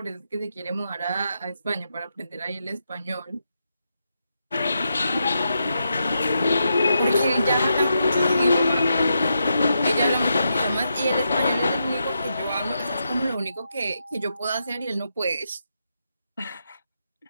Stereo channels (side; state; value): both; inverted; correlation -0.84